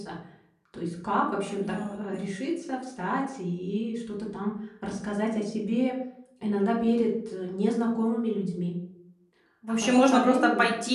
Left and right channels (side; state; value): both; identical; correlation 1.00